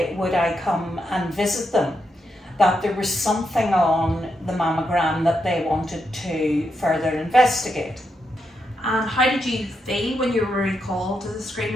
would I come and visit them, that there was something on the mammogram that they wanted to further investigate. And how did you feel when you were recalled to the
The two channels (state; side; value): normal; both; correlation 0.83